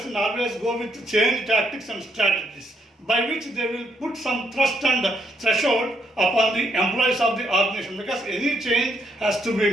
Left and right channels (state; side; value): normal; both; correlation 0.74